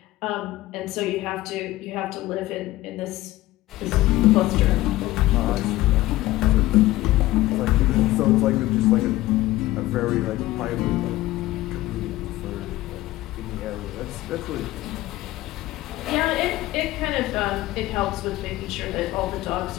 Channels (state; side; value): quieter; right; 17.0 dB